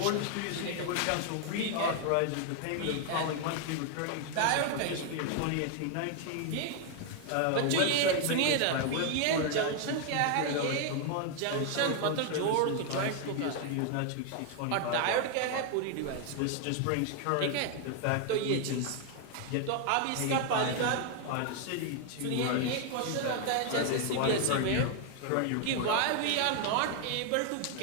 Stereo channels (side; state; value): both; different; correlation 0.00